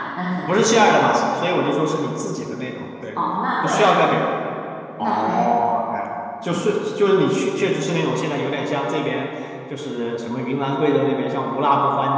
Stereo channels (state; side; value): identical; both; correlation 1.00